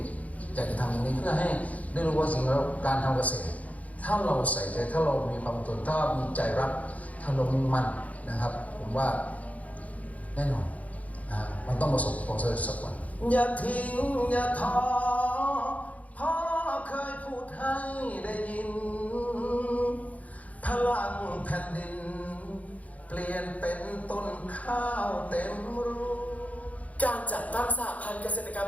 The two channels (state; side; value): late; right; 0.070 ms